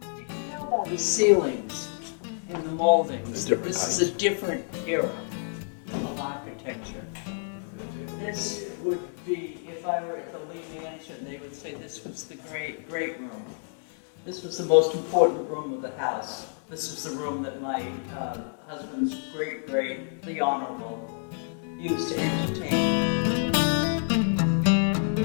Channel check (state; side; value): silent; right; 59 dB below the other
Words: You can tell by the ceilings and the moldings The that this different is a different era of architecture. This would be, if I were at the Lee Mansion, they would say this was the great room. This was the most important room of the house. This was the room that my husband's great, the Honorable, used to entertain.